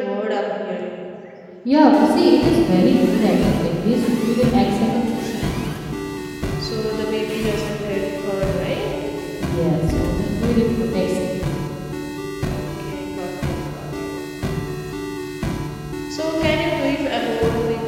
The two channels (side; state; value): both; identical; correlation 1.00